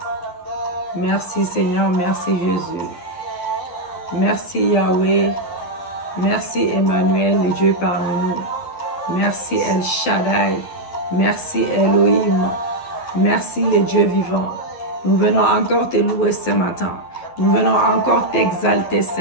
Merci Seigneur, merci Jésus. Merci Yahweh. Merci Emmanuel, le Dieu parmi nous. Merci El Shaddai. Merci Elohim. Merci le Dieu vivant. Nous venons encore te louer ce matin. Nous venons encore t'exalter ce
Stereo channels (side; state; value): right; late; 12 ms